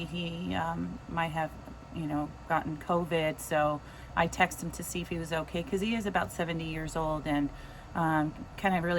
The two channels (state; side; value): identical; both; correlation 1.00